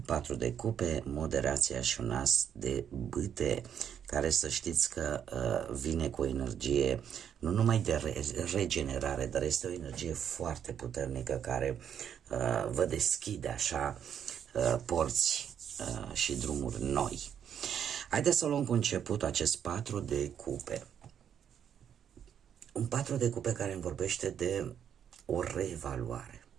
4 de cupe, moderația și un as de bâte, care să știți că vine cu o energie nu numai de regenerare, dar este o energie foarte puternică care vă deschide așa porți și drumuri noi. Haideți să luăm cu început acest 4 de cupe. Un 4 de cupe care îmi vorbește de o reevaluare,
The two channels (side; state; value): left; quieter; 8.7 dB